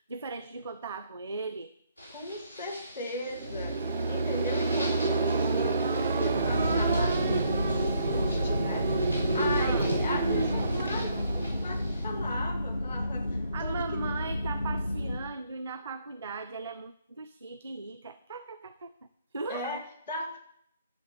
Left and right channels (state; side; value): inverted; both; correlation -0.71